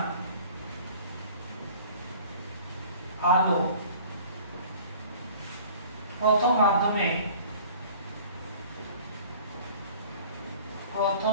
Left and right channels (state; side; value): inverted; both; correlation -0.48